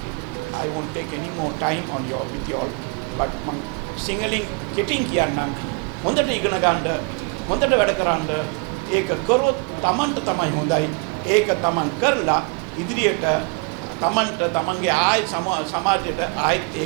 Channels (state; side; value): quieter; left; 32.0 dB